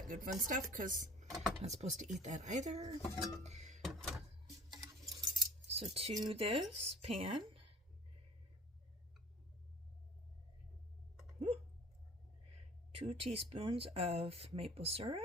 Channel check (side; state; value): both; normal; correlation 0.47